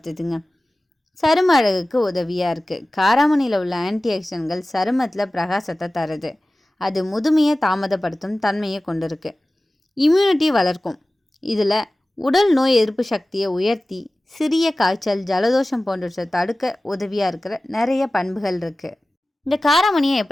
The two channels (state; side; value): normal; both; correlation 0.97